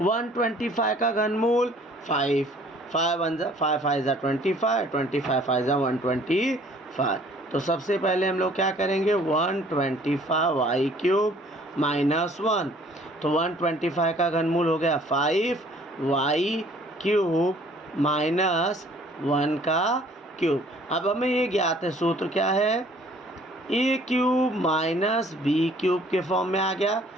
का घनमूल 5, 5 1 जा 5 5 जा 25, 25 5 जा 125। तो सबसे पहले हम लोग क्या करेंगे, 125y क्यूब माइनस 1। तो 125 का घनमूल हो गया 5y क्यूब माइनस 1 का क्यूब। अब हमें ये ज्ञात है, सूत्र क्या है, a cube minus b cube के फॉर्म में आ गया।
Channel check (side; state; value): both; normal; correlation 0.56